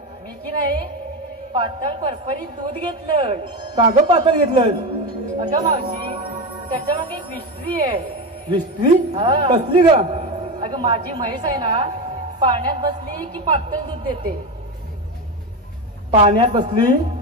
मी की नाही पातळ परपरीत दूध घेतलं. का ग पातळ घेतलं? अगं मावशी, त्याच्या मागे एक विस्त्री आहे. विस्त्री? हा. कसली ग? अगं माझी म्हैस आहे ना, पाण्यात बसली की पातळ दूध देते. पाण्यात बसली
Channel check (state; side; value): normal; both; correlation 0.17